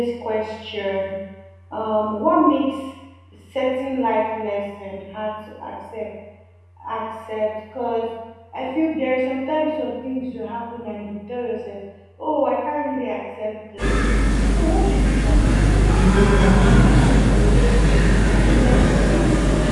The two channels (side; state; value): both; identical; correlation 1.00